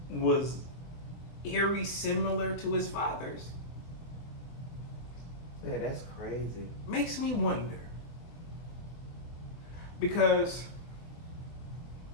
was eerie similar to his father's Yeah, that's crazy. makes me wonder, because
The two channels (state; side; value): late; right; 23 ms